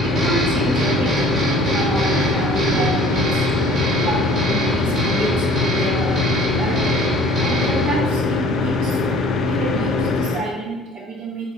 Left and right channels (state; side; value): normal; both; correlation 0.51